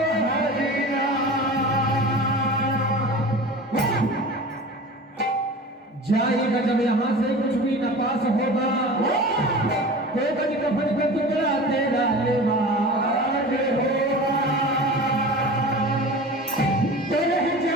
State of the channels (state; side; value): normal; both; correlation 0.35